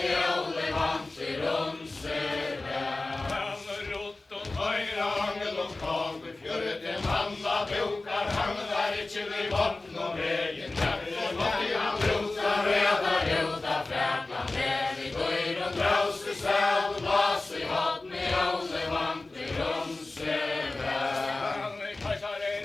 håller man till Jonse väl Rott och höjra angel och kag Fjörret en manna bokar Han där inte vid botten och vägen Därför måste han rota röda röda fräkna Med i går och brauser säl Glas i hopp ni håller man till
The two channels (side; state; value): right; quieter; 3.1 dB